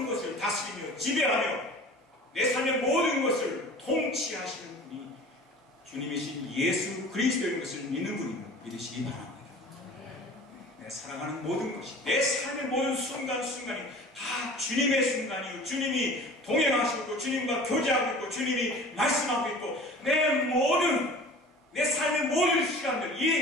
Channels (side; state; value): both; normal; correlation 0.42